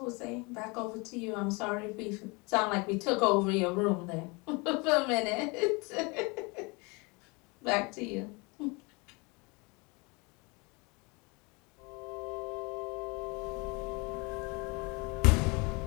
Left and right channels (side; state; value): right; quieter; 28.3 dB